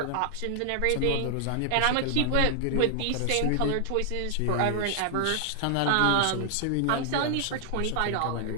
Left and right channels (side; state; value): both; different; correlation 0.00